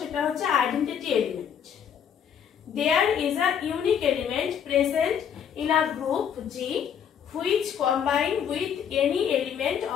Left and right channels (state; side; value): quieter; right; 8.3 dB